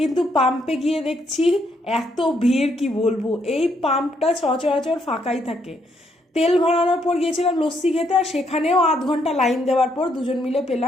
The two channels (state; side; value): normal; both; correlation 0.73